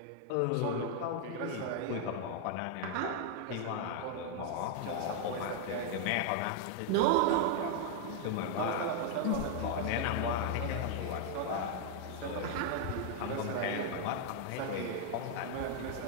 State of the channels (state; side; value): different; both; correlation 0.00